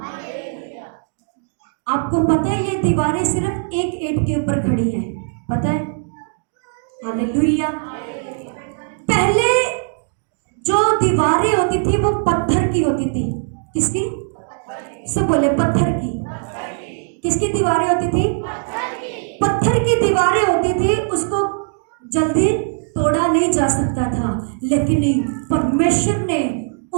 आपको पता है ये दीवारें सिर्फ एक ईंट के ऊपर खड़ी हैं, पता है? हालेलुया। पहले जो दीवारें होती थी वो पत्थर की होती थी। किसकी? सब बोले पत्थर की। किसकी दीवारें होती थी? पत्थर की दीवारें होती थी। उसको जल्दी तोड़ा नहीं जा सकता था, लेकिन परमेश्वर ने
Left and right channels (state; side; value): silent; left; 62 dB below the other